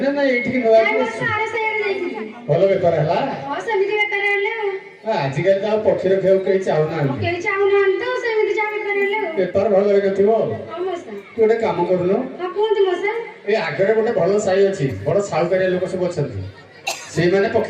ନା ଏଇଠିକି ନବାକୁ ଭଲ ବେପାର ହେଲା ଆଜିକାଲି ତ ଆଉ ପକ୍ଷୀ ରଖିବାକୁ କେହି ଚାହୁଁନାହାନ୍ତି ବେପାର ଭଲ ହେଇନଥିବ ତୁ ଗୋଟେ କାମ କରୁନୁ ଏ ଆଗରେ ଗୋଟେ ଭଲ ସାହି ଅଛି ବଡ ସାହୁକାରିଆ ଲୋକ ସବୁ ଅଛନ୍ତି ସେଇମାନେ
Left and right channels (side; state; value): both; identical; correlation 1.00